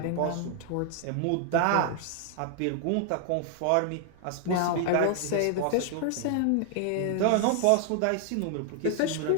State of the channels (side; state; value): both; different; correlation 0.00